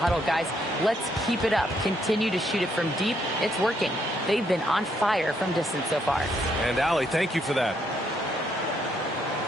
guys, let's keep it up. Continue to shoot it from deep. It's working. They've been on fire from distance so far. And Allie, thank you for that.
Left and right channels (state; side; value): normal; both; correlation 0.73